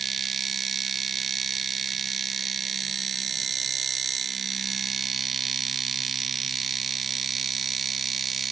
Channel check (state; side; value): quieter; left; 5.9 dB